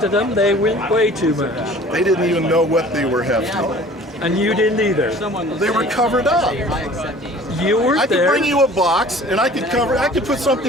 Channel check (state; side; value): normal; both; correlation 0.47